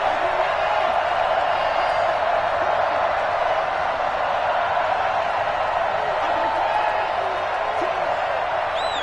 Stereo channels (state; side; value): identical; both; correlation 1.00